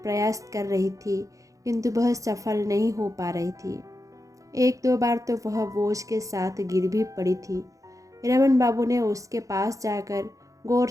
कर रही थी, किंतु वह सफल नहीं हो पा रही थी। 1-2 बार तो वह बोझ के साथ गिर भी पड़ी थी। रमन बाबू ने उसके पास जाकर गौर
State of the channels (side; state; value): left; late; 0.16 ms